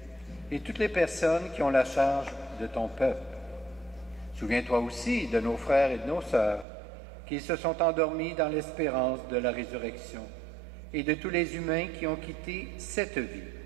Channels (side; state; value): left; drops out; at 6.7 s